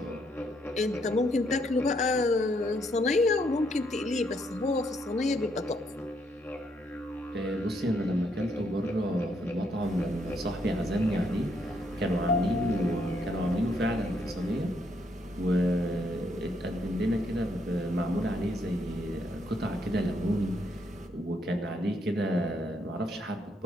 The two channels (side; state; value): both; normal; correlation 0.73